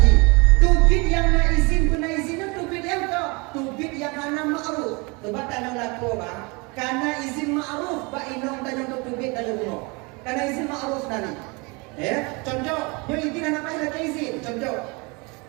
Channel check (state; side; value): quieter; left; 28.5 dB